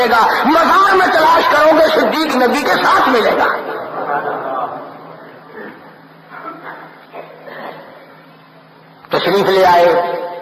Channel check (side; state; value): both; identical; correlation 1.00